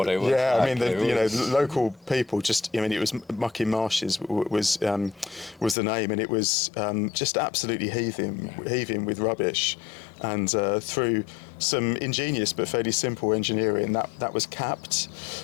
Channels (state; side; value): drops out; right; at 5.8 s